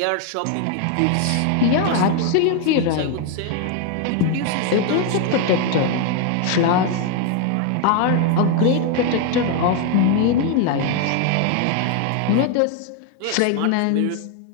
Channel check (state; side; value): different; both; correlation 0.01